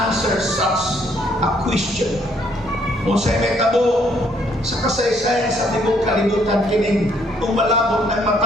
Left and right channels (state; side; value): normal; both; correlation 0.67